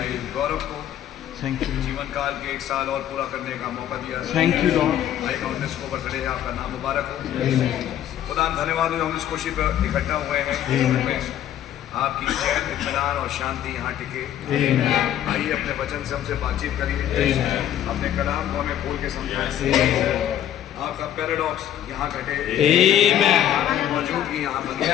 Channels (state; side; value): quieter; right; 11.1 dB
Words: गौरव को थैंक यू जीवन काल के 1 साल और पूरा करने का मौका दिया। Thank you Lord. भाई काउंटनेस को बर्थडे है, आपका नाम मुबारक हो। खुदा धन्यवाद हो, हम इस खुशी पर इकट्ठा हुए हैं। आपकी चैन, इत्मीनान और शांति यहाँ टिके। आइए अपने वचन से हमसे बातचीत करिए, अपने कलाम को हमें खोल के समझाएं। आपका पैराडॉक्स यहाँ घटे, आपकी मौजूदगी यहाँ बन